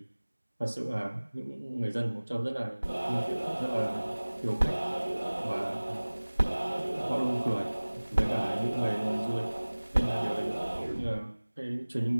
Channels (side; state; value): both; inverted; correlation -1.00